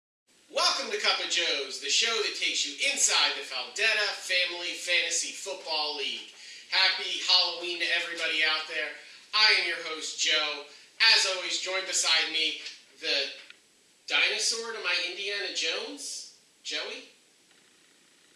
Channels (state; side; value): identical; both; correlation 1.00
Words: to Cup of Joe's, the show that takes you inside the Faldetta Family Fantasy Football League. Happy Halloween to everybody out there. I am your host, Joe. As always, joined beside me, the dinosaur to my Indiana Jones, Joey?